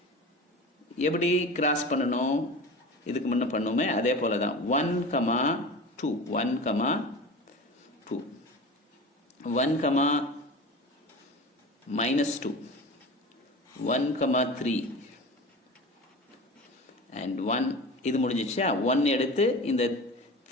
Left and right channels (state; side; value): normal; both; correlation 0.33